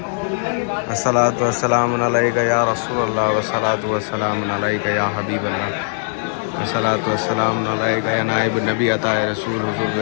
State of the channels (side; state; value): right; silent; digital silence